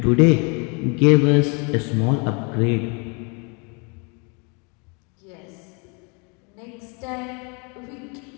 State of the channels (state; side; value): quieter; right; 33.2 dB